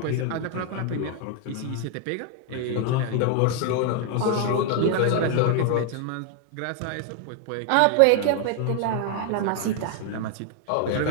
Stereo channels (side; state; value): both; different; correlation 0.00